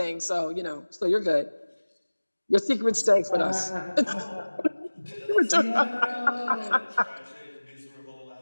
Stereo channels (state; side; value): inverted; both; correlation -1.00